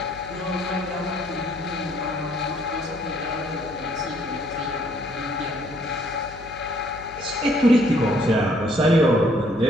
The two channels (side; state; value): left; noise; hum, 19 dB below the sound